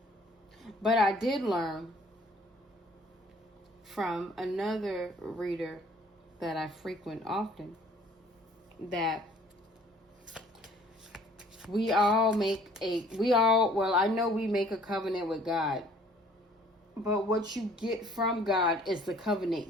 But I did learn from another reader that I frequent often that I know we make a covenant with God, but what you get from God is the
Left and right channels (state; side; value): normal; both; correlation 0.56